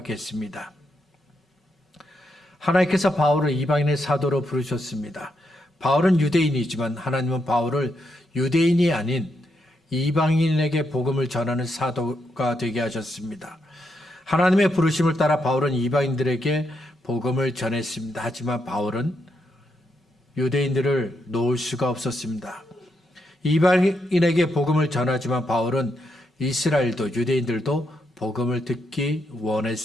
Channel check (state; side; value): normal; both; correlation 0.81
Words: 하나님께서 바울을 이방인의 사도로 부르셨습니다. 바울은 유대인이지만 하나님은 바울을 유대인이 아닌 이방인에게 복음을 전하는 사도가 되게 하셨습니다. 하나님의 부르심을 따라 바울은 이방인들에게 복음을 전했습니다. 하지만 바울은 유대인들을 놓을 수가 없었습니다. 이방인에게 복음을 전하지만 바울은 이스라엘도 유대인들도 복음을 듣기